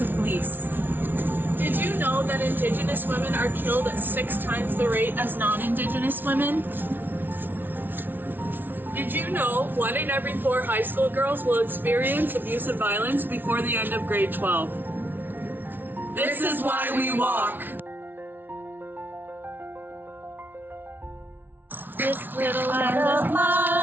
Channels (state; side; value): late; left; 0.094 ms